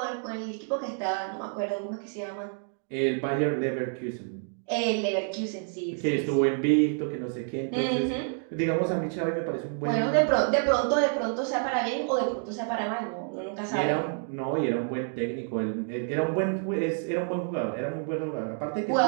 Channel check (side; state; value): left; silent; 59 dB below the other